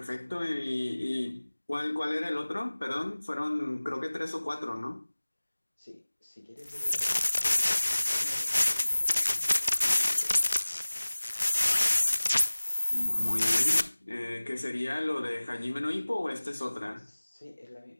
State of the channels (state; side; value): inverted; both; correlation -1.00